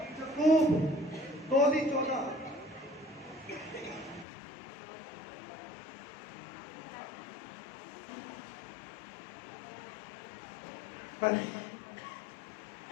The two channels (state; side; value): drops out; right; at 4.2 s